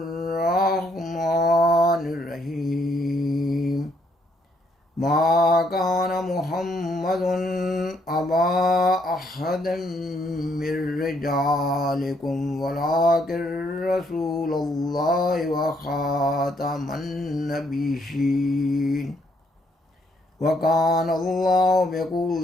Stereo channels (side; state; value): both; normal; correlation 0.71